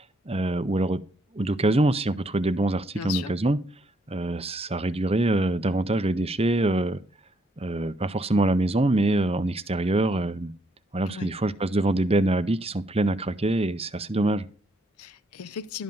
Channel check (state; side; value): normal; both; correlation 0.72